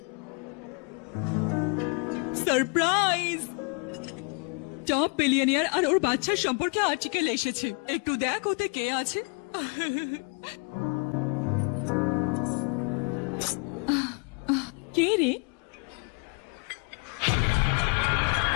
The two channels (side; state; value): right; quieter; 35.5 dB